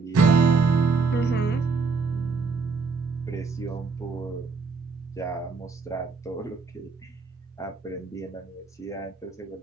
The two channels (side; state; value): left; quieter; 4.7 dB